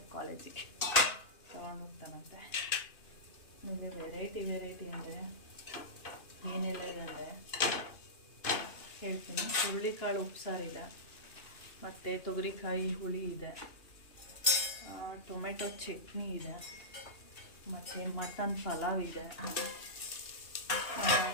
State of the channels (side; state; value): right; late; 2.9 ms